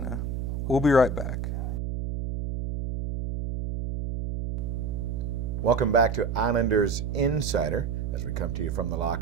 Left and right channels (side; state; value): right; noise; hum, 3 dB below the sound